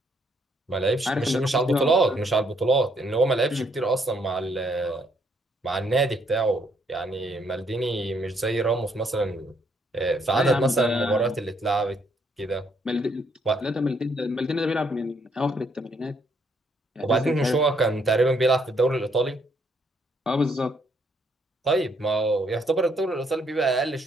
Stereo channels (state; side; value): normal; both; correlation 0.70